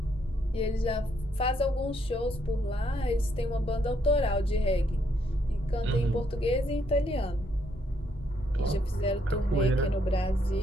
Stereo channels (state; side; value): normal; both; correlation 0.73